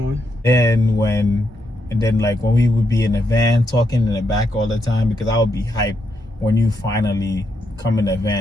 And then like when we would be in the van talking in the back all the time, because I would be hyped when you finally come in the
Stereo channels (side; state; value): both; normal; correlation 0.80